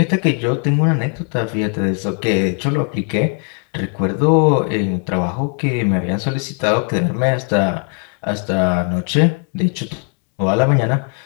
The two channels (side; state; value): right; quieter; 39.6 dB